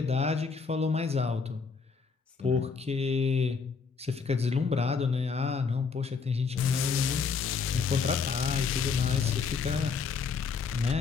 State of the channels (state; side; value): quieter; right; 5.3 dB